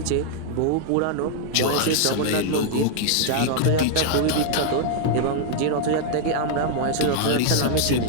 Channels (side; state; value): both; different; correlation 0.00